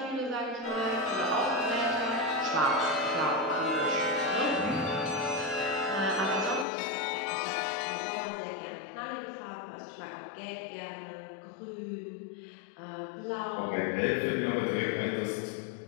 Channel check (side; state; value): right; drops out; at 6.7 s